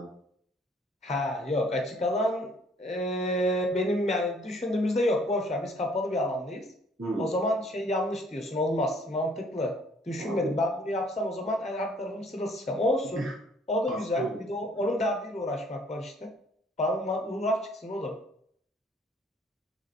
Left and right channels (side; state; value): both; normal; correlation 0.60